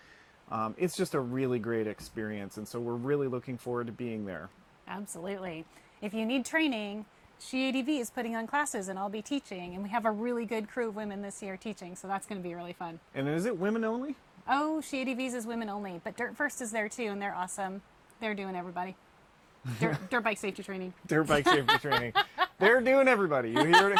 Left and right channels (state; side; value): identical; both; correlation 1.00